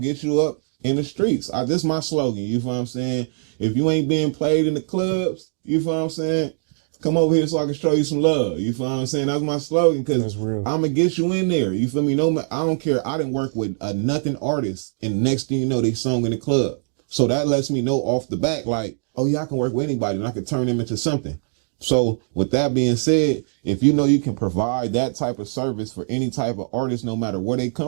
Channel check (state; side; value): silent; left; digital silence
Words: you up in the streets. This is my slogan, you feel what I'm saying? If you ain't being played in the clubs, you feel what I'm saying? Come over here so I can show you some love. You feel what I'm saying? That's my slogan, because I'm going to get you in there. You feel me? No, I don't care. I didn't work with a nothing artist, and next thing you know, they sung in the club. So that lets me know off the back, like, oh yeah, I can work with anybody and I can turn them into something. So with that being said, if you know you can provide that type of service for any type of artist, no matter where they